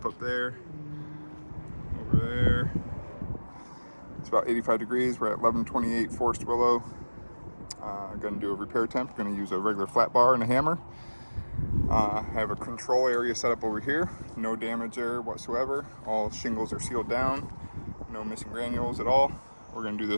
up there, over there. It's about 85 degrees. We're at 1128 Forest Willow. Going to do a repair attempt. Going to use a regular flat bar and a hammer. I have a control area set up over here. No damage there whatsoever. All shingles are sealed down. No missing granules at all. We're going to do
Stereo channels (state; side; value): inverted; both; correlation -1.00